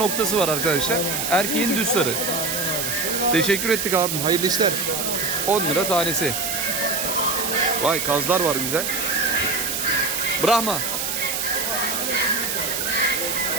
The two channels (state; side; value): noise; right; hiss, 1 dB below the sound